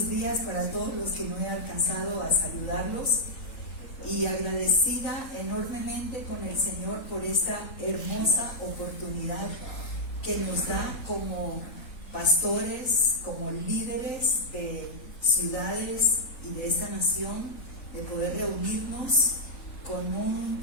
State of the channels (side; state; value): right; late; 3.8 ms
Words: días para todos los que no he alcanzado a saludarlos y agradecida enormemente con el Señor por esta hermosa oportunidad que nos da como pastores, como líderes de ciudades y de esta nación, de poder reunirnos con un